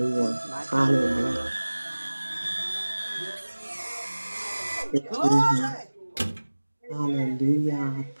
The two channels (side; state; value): both; inverted; correlation -1.00